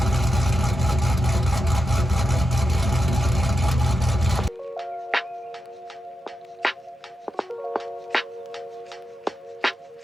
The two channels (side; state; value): both; normal; correlation 0.88